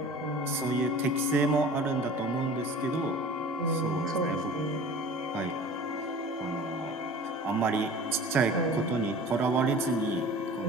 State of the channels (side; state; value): both; normal; correlation 0.42